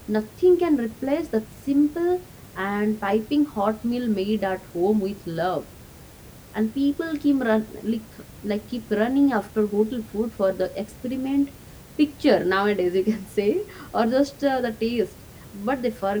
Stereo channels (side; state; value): both; identical; correlation 1.00